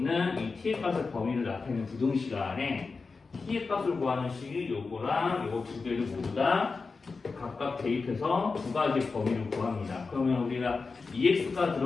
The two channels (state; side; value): quieter; right; 4.4 dB